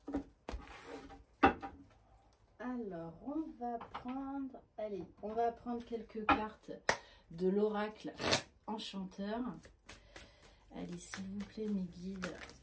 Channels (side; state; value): both; identical; correlation 1.00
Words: Alors, on va prendre... Allez, on va prendre quelques cartes de l'oracle enchanteur. Allez, s'il vous plaît, mes guides.